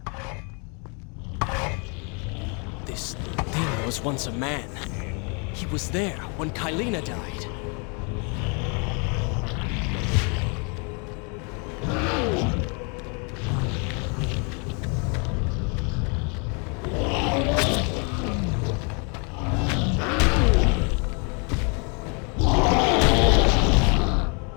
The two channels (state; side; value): quieter; right; 35.3 dB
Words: This thing was once a man. He was there when Kylina died.